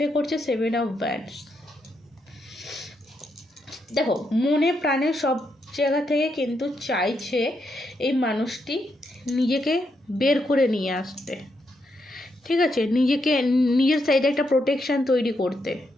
করছে 7 অফ ব্যান্ডস। দেখো, মনে প্রাণে সব জায়গা থেকে কিন্তু চাইছে এই মানুষটি নিজেকে বের করে নিয়ে আসতে। ঠিক আছে, নিজের সাইডে একটা প্রোটেকশান তৈরি করতে,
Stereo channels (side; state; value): both; normal; correlation 0.80